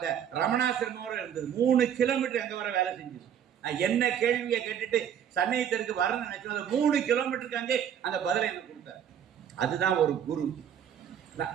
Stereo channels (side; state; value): left; quieter; 9.1 dB